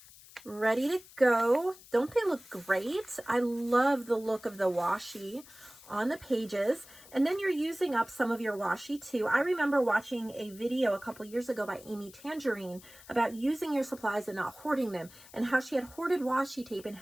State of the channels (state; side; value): noise; left; hiss, 21 dB below the sound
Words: ready to go. Don't they look great? I love the look of the washi on the pages. And then you're using up some of your washi too. I remember watching a video a couple years ago by Amy Tangerine about using your supplies and not hoarding them, and how she had hoarded washi tape and